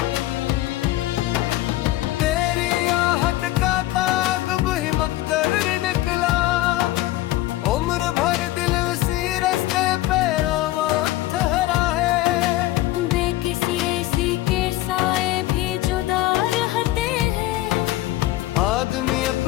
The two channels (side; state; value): right; quieter; 16.3 dB